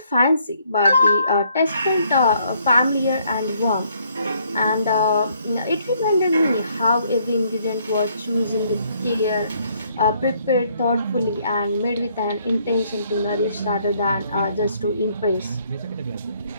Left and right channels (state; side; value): inverted; both; correlation -0.68